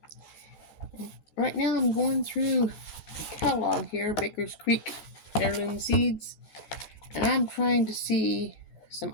Right now I'm going through the catalog here, Baker's Creek Heirloom Seeds, and I'm trying to see some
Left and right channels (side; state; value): right; late; 14 ms